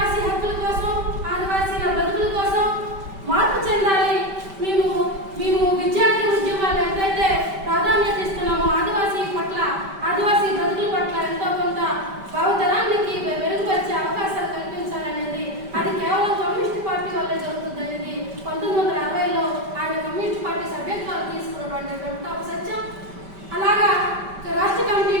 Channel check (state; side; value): late; left; 5.1 ms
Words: హక్కుల కోసం, ఆదివాసీల బ్రతుకుల కోసం మార్పు చెందాలి. మేము విద్యార్థి ఉద్యమాలు ఎంతైతే ప్రాధాన్యత ఇస్తున్నామో ఆదివాసీ పట్ల, ఆదివాసీ బ్రతుకుల పట్ల ఎంతో కొంత భావితరానికి మెరుగుపరిచే అవకాశాలు కల్పించాలనేది అది కేవలం కమ్యూనిస్ట్ పార్టీ వల్లే జరుగుతుందనేది 1960లో ఆయన కమ్యూనిస్ట్ పార్టీ సభ్యత్వాలు తీసుకున్నటువంటి ఒక సత్యం. అలాగా రాష్ట్ర కమిటీ